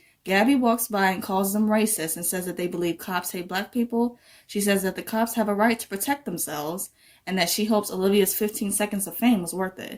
Gabby walks by and calls them racist and says that they believe cops hate Black people. She says that the cops have a right to protect themselves, and that she hopes Olivia's 15 seconds of fame was worth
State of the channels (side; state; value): both; identical; correlation 1.00